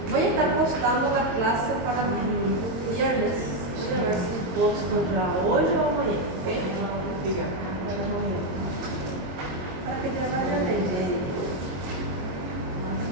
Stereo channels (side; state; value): left; late; 22 ms